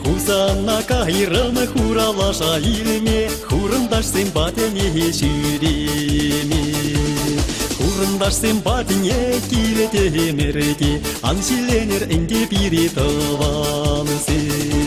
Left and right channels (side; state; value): both; identical; correlation 1.00